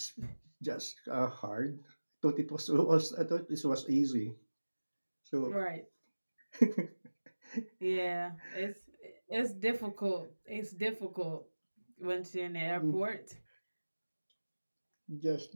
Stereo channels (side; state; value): both; inverted; correlation -1.00